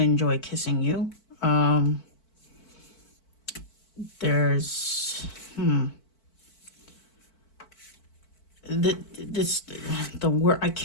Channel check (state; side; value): late; right; 4.5 ms